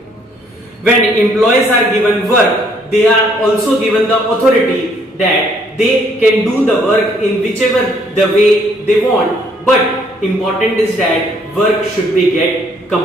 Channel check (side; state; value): both; normal; correlation 0.65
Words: When employees are given work, they are also given the authority that they can do the work in whichever the way they want, but important is that work should be get